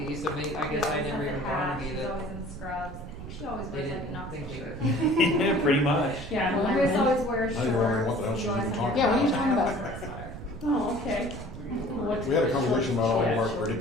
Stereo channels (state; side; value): noise; right; rumble, 11 dB below the sound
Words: so maybe, I guess I never even dawned on me She's that always in scrubs. I think she always they wears like a didn't Knoxville think shirt. they Pretty much. Yeah. Well, Chris always wears Now shorts. you're wondering what the hell She she's always even has talking a Yeah, what are you sweater. talking I about? always wear a sweater. Oh, okay. What's We had a the conversation short about all of our shorts?